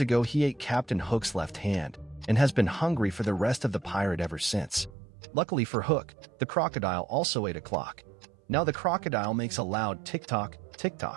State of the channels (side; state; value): left; drops out; at 4.9 s